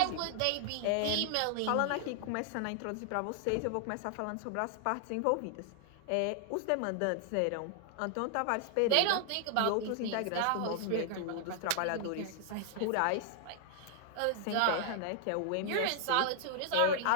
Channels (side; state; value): both; different; correlation 0.00